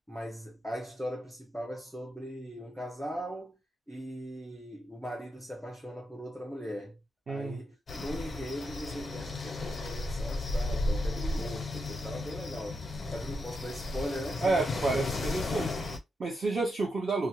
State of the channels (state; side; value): normal; both; correlation 0.84